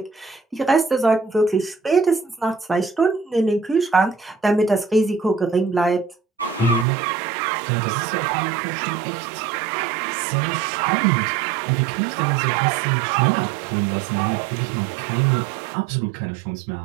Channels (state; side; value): drops out; left; at 6.9 s